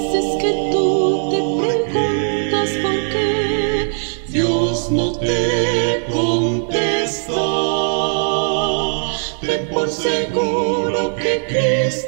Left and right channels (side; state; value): left; silent; digital silence